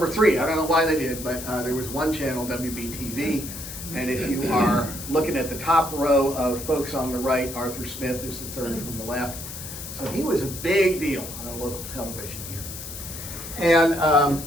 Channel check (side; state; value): left; noise; hiss, 10 dB below the sound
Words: 3. I don't know why they did, but there was one channel, WBTV. And if you are looking at the top row of folks on the right, Arthur Smith is the third from the left. So he was a big deal on local television here. And